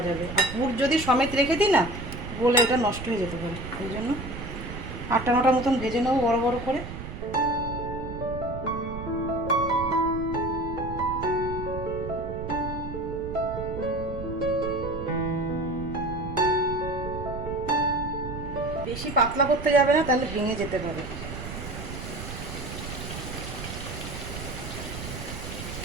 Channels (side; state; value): right; noise; rumble, 8 dB below the sound